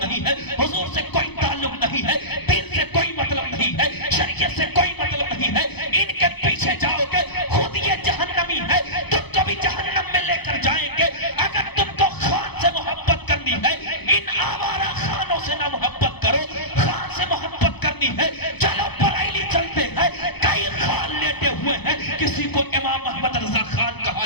نہیں ہے، حضور سے کوئی تعلق نہیں ہے، دین سے کوئی مطلب نہیں ہے، شریعت سے کوئی مطلب نہیں ہے۔ ان کے پیچھے جاؤ گے خود یہ جہنمی ہے، تم کو بھی جہنم میں لے کر جائیں گے۔ اگر تم کو خان سے محبت کرنی ہے، ان آوارہ خانوں سے نہ محبت کرو، خان سے محبت کرنی ہے چلو بریلی چلتے ہیں، کئی خان لیتے ہوئے ہیں، کسی کو امام محمد رضا خان کہا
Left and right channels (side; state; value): right; late; 0.98 ms